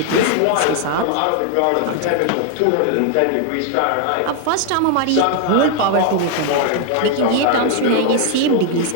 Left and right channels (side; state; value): both; different; correlation 0.00